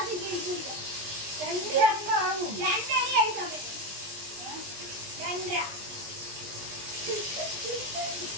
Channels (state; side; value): late; left; 20 ms